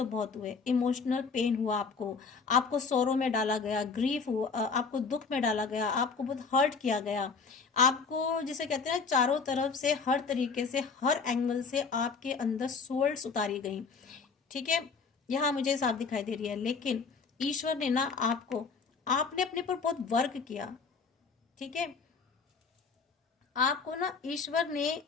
बहुत हुए, इमोशनल पेन हुआ आपको, आपको सोरो में डाला गया, ग्रीफ हुआ, आपको दुख में डाला गया, आपको बहुत हर्ट किया गया, आपको जिसे कहते हैं चारों तरफ से, हर तरीके से, हर एंगल से आपके अंदर सोल्स उतारी गई। ठीक है, यहाँ मुझे साफ दिखाई दे रही है। लेकिन ईश्वर ने ना आपने अपने पर बहुत वर्क किया। ठीक है, आपको ना ईश्वर ने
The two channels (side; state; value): right; quieter; 5.0 dB